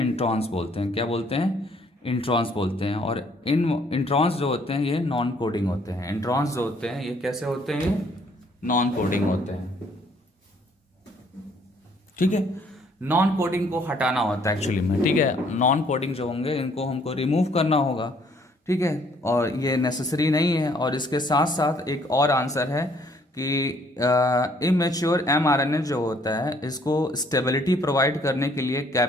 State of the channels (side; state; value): both; normal; correlation 0.63